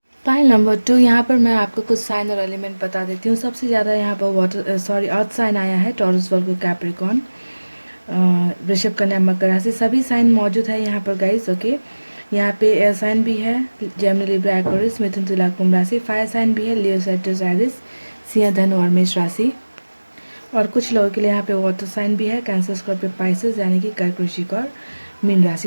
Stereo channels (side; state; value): both; inverted; correlation -1.00